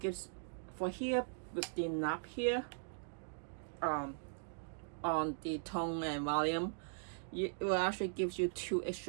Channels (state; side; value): silent; left; digital silence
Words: for here with the knob here on the tone and volume, it will actually gives you 2